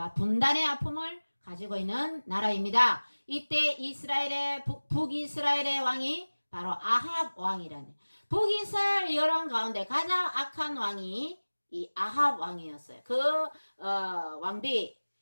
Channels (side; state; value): both; inverted; correlation -1.00